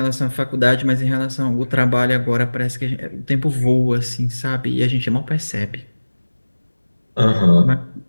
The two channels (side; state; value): both; inverted; correlation -1.00